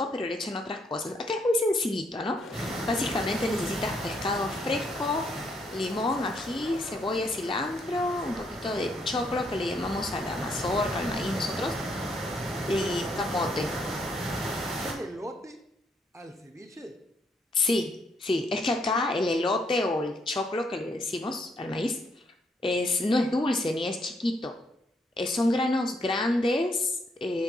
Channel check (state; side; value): normal; both; correlation 0.73